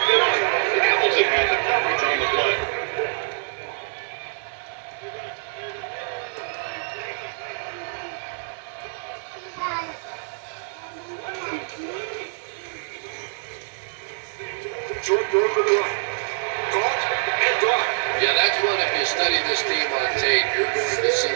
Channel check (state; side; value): silent; left; digital silence